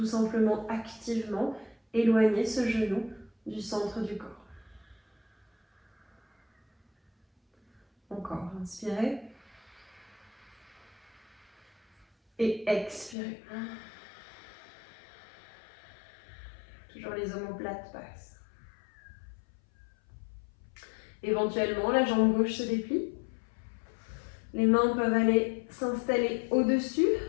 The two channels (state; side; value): drops out; right; at 13.2 s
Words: simplement activement. Éloignez ce genou du centre du corps. Encore, inspirez. Et expirez. Toujours les omoplates basses. Éventuellement, la jambe gauche se déplie. Les mains peuvent aller s'installer au-dessus